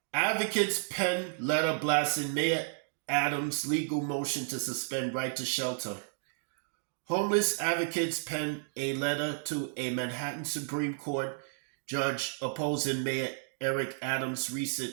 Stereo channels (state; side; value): silent; left; digital silence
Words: Advocates pen letter blasting Mayor Adams' legal motion to suspend right to shelter. Homeless advocates penned a letter to a Manhattan Supreme Court judge opposing Mayor Eric Adams'